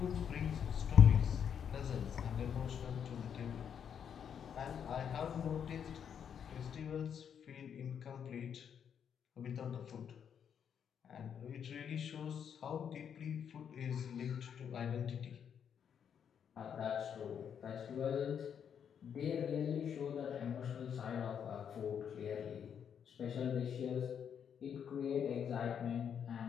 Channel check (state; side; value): quieter; right; 8.0 dB